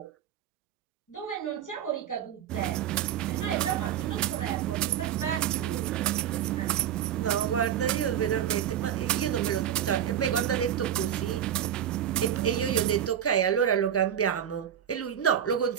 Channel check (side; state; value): left; quieter; 9.9 dB